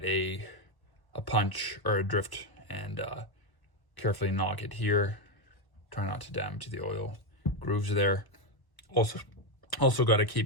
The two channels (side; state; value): right; late; 1.1 ms